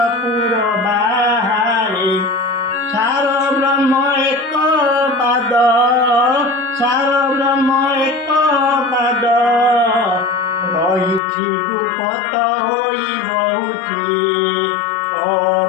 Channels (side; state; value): right; drops out; at 11.2 s